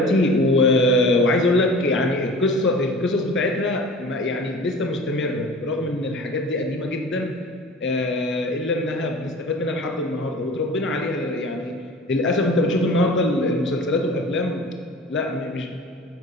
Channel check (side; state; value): both; normal; correlation 0.40